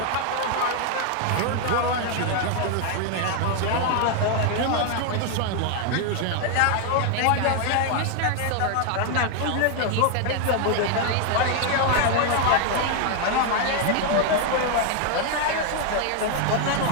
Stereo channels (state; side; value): different; both; correlation 0.01